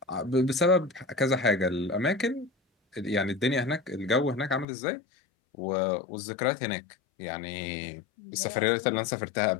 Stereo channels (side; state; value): right; drops out; at 4.7 s